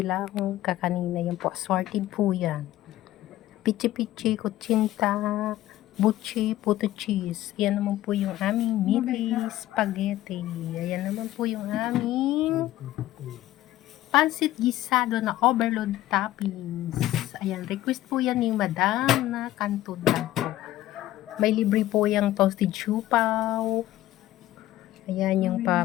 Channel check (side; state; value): right; quieter; 14.7 dB